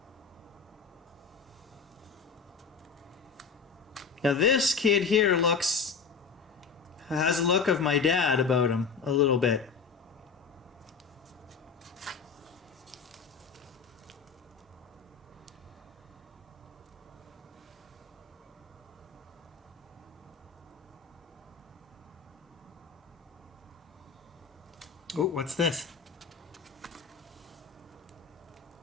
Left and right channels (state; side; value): quieter; right; 5.6 dB